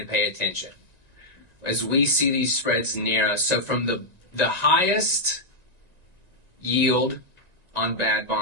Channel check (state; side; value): late; left; 1.9 ms